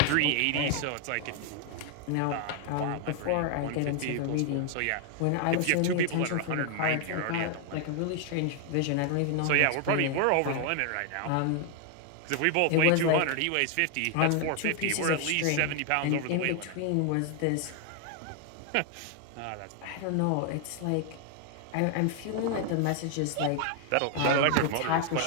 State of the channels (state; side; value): different; both; correlation 0.00